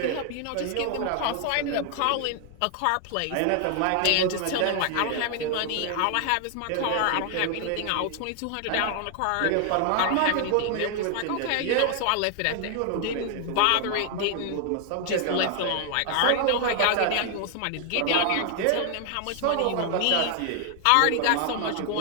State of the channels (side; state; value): both; different; correlation 0.00